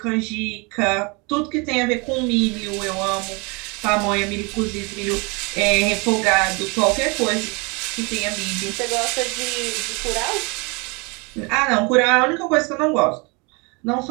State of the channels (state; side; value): quieter; left; 29.4 dB